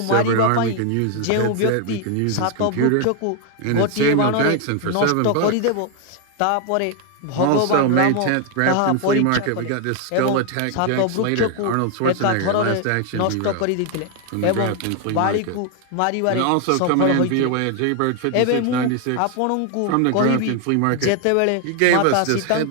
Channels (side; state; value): both; different; correlation 0.01